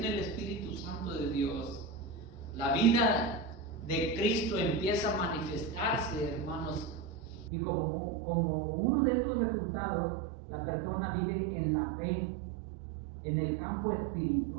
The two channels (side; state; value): left; drops out; at 7.5 s